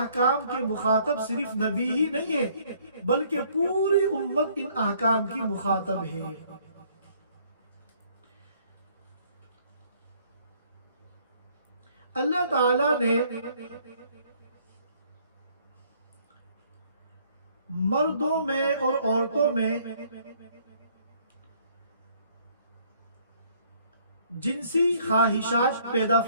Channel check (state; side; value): inverted; both; correlation -0.62